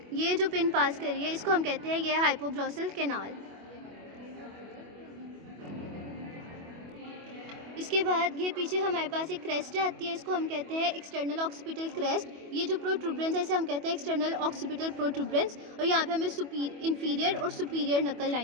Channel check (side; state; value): left; late; 25 ms